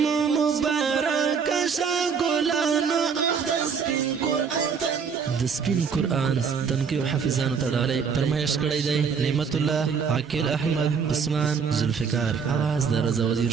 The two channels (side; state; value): left; quieter; 6.2 dB